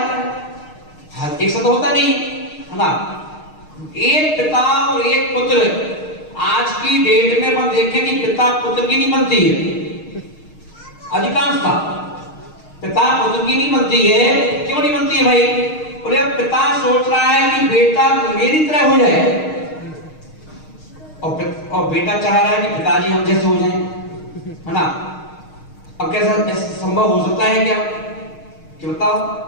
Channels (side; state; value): right; late; 6.5 ms